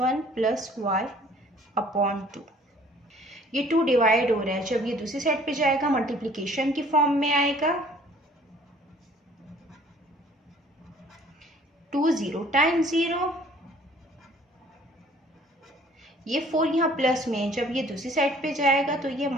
प्लस y अपॉन 2। ये 2 डिवाइड हो रहा है, जब ये दूसरी साइड पे जाएगा मल्टीप्लिकेशन की फॉर्म में आएगा। 2 0 टाइम्स 0, ये 4 यहाँ प्लस में है, जब ये दूसरी साइड पे जाएगा तो ये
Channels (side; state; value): both; normal; correlation 0.55